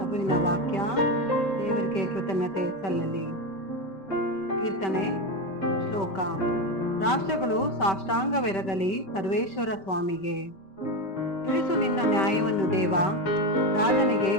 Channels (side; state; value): right; late; 5.2 ms